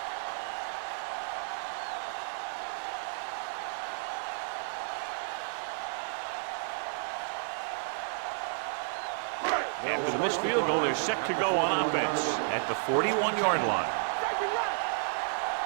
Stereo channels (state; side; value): silent; left; digital silence